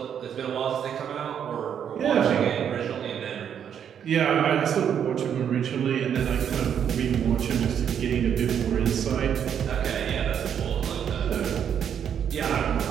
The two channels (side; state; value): left; quieter; 8.5 dB